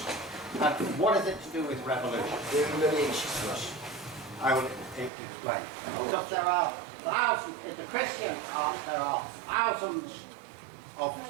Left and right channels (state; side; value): drops out; left; at 5.1 s